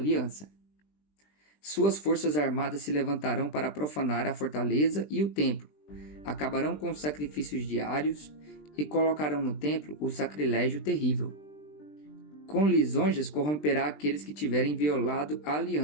Suas forças armadas se levantarão para profanar a fortaleza e o templo, acabarão com os sacrifícios diários e colocarão no templo o sacrilégio terrível. Com lisonjas corromperá aqueles que tiverem violado a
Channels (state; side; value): late; right; 20 ms